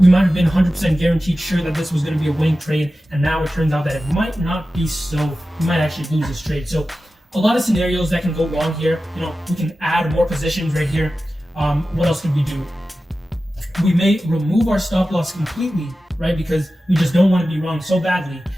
might have been 100% guaranteed sure that this was going to be a winning trade, and now it turns out that it might not be so. We might actually lose this trade. So a lot of scenarios that can go wrong here. You know, we can add more positions right here. What else can we do? We may remove our stop loss completely, right? Because we just don't want to be wrong so badly.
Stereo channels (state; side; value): normal; both; correlation 0.94